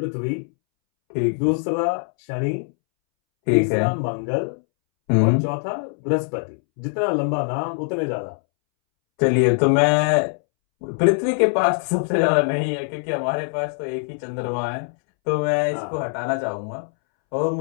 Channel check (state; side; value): silent; right; 64 dB below the other